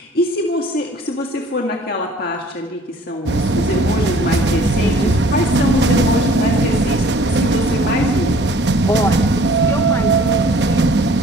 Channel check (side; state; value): both; normal; correlation 0.53